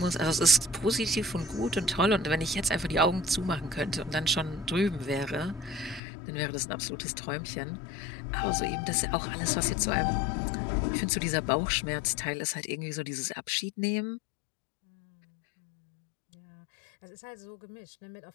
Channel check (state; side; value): drops out; right; at 6.0 s